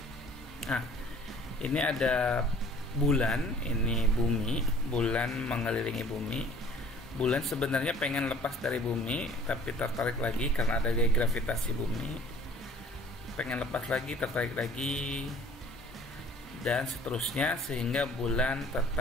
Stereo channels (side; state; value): both; normal; correlation 0.51